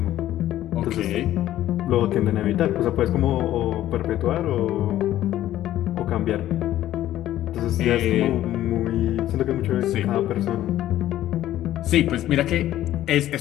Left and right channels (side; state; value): right; quieter; 13.3 dB